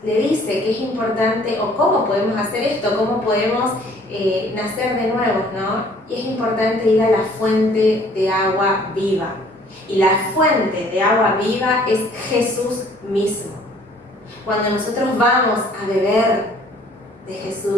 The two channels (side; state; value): both; normal; correlation 0.57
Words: le dice que es importante, o cómo podemos hacer esto, cómo podemos nacer de nuevo, ¿no? Y es importante ir a la fuente de agua viva. Y la fuente de agua viva es Jesús mismo. Cuando nosotros vamos a beber de